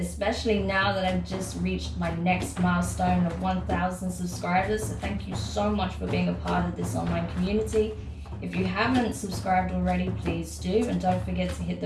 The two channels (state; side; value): identical; both; correlation 1.00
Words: now that I've just reached my next milestone of 1,000 subscribers. So thank you so much for being a part of this online community. If you haven't subscribed already, please do, and don't forget to hit